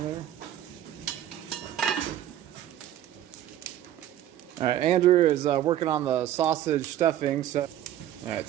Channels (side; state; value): left; quieter; 11.9 dB